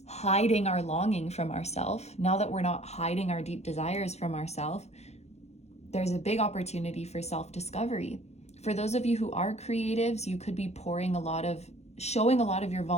hiding our longing from ourselves, now that we're not hiding our deep desires from ourselves, there's a big opportunity for self-discovery. For those of you who are creatives, you could be showing a lot of your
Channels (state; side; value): late; right; 0.31 ms